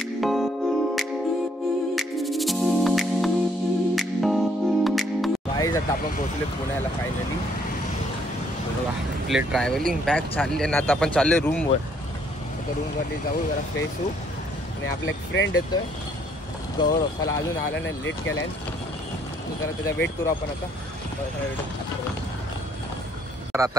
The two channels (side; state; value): both; normal; correlation 0.66